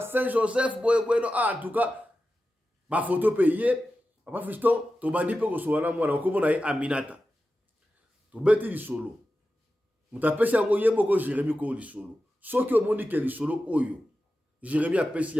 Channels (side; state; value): both; normal; correlation 0.92